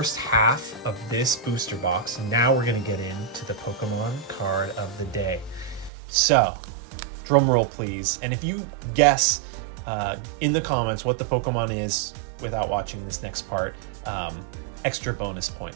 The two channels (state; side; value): drops out; left; at 5.9 s